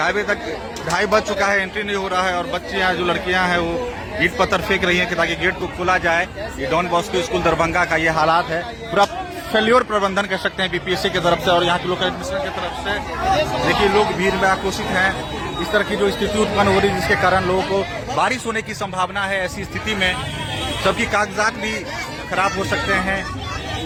बजे तक 2:30 बज चुका है, एंट्री नहीं हो रहा है। और बच्चे यहाँ जो लड़कियां हैं वो ईंट पत्थर फेंक रही हैं कि ताकि गेट को खोला जाए। ये डॉन बॉस्को स्कूल दरभंगा का ये हालात है। पूरा फेल्योर प्रबंधन कह सकते हैं बीपीएससी की तरफ से और यहाँ के लोकल एडमिनिस्ट्रेशन की तरफ से। देखिए लोग भीड़ में आक्रोशित हैं। इस तरह की जो स्थिति उत्पन्न हो रही है जिसके कारण लोगों को बारिश होने की संभावना है। ऐसी स्थिति में सबकी कागजात भी खराब हो सकते हैं।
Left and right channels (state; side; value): identical; both; correlation 1.00